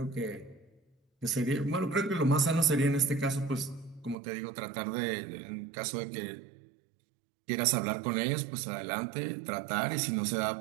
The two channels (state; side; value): drops out; left; at 4.2 s